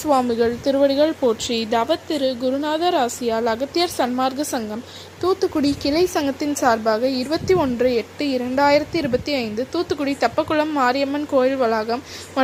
திருவடிகள் போற்றி. தவத்திரு குருநாதர் ஆசியால் அகத்தியர் சன்மார்க்க சங்கம் தூத்துக்குடி கிளை சங்கத்தின் சார்பாக 21/8/2025 தூத்துக்குடி தெப்பக்குளம் மாரியம்மன் கோயில் வளாகம்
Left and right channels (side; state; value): both; identical; correlation 1.00